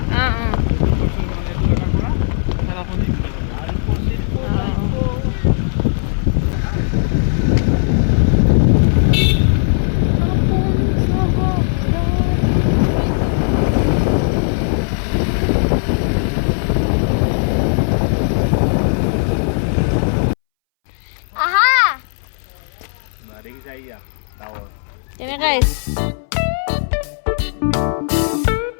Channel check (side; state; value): right; silent; 65 dB below the other